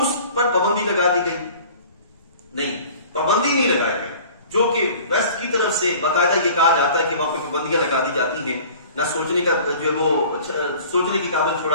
پر پابندی لگا دی گئی. نہیں، پابندی نہیں لگائی گئی. جو کہ ویسٹ کی طرف سے باقاعدہ یہ کہا جاتا ہے کہ وہاں پہ پابندیاں لگا دی جاتی ہیں، نہ سوچنے کا جو وہ سوچنے کی قابل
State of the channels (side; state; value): both; inverted; correlation -0.46